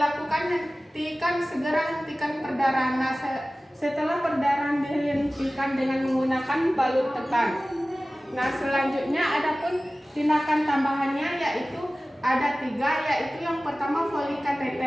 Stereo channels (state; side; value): normal; both; correlation 0.97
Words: hentikan perdarahan. Nah, setelah perdarahan dihentikan dengan menggunakan balut tekan. Nah, selanjutnya adapun tindakan tambahannya yaitu ada 3, yaitu yang pertama Foley